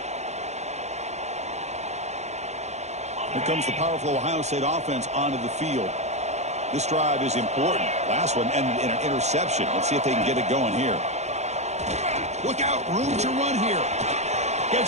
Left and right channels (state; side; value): late; left; 0.33 ms